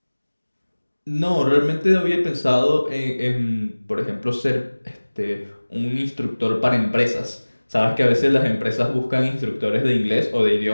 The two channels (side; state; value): both; inverted; correlation -1.00